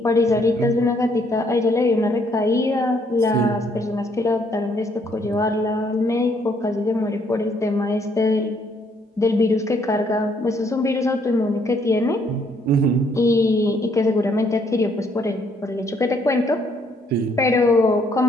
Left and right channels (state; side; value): normal; both; correlation 0.68